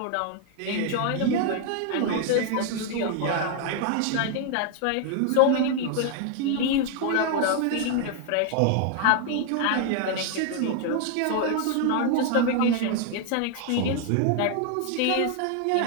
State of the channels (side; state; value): both; different; correlation 0.00